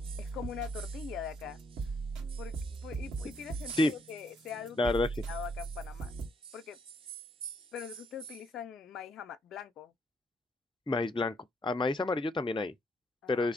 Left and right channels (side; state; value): both; normal; correlation 0.72